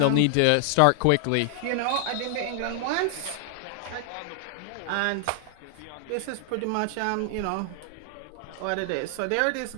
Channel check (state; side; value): different; both; correlation 0.00